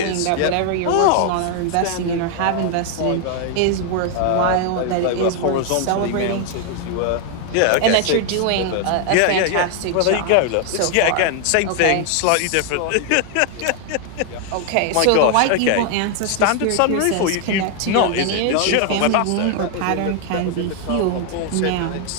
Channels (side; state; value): both; different; correlation 0.00